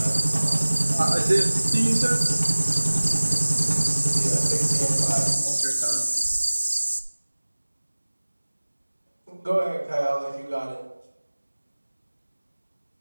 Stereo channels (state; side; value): inverted; both; correlation -1.00